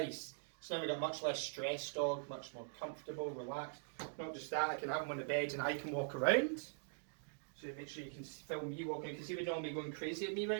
So now we've got much less stress dog, much more comfortable, relaxed. Not just that, I can have him on the bed and I can walk around. So make sure you can film me walking. You can see we're not me going crazy at me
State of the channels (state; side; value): silent; left; digital silence